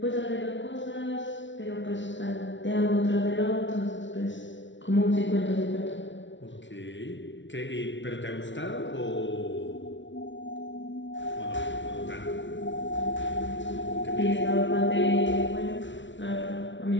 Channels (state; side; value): late; right; 0.55 ms